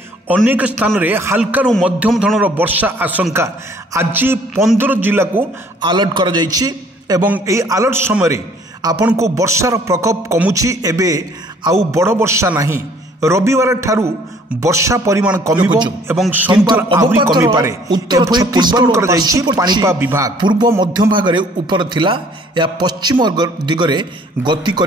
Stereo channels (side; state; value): both; normal; correlation 0.58